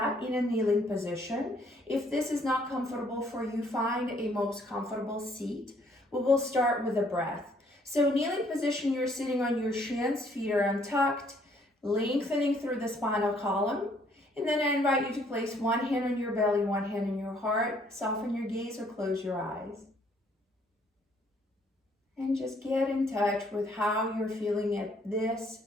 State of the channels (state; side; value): normal; both; correlation 0.65